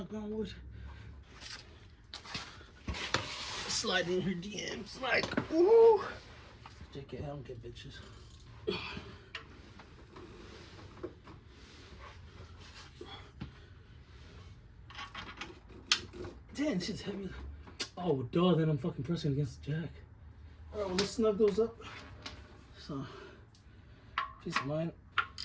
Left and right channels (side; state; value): both; identical; correlation 1.00